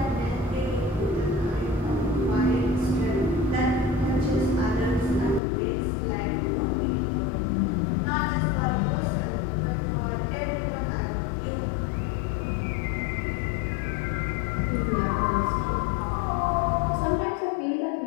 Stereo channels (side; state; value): right; drops out; at 5.4 s